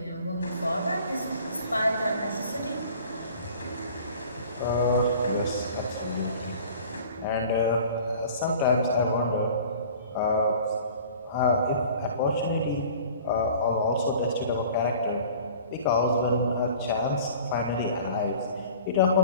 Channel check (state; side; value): inverted; both; correlation -0.46